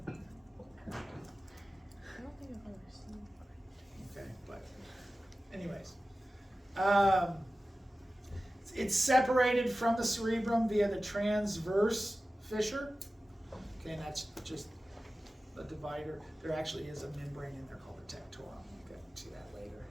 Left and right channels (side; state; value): both; normal; correlation 0.95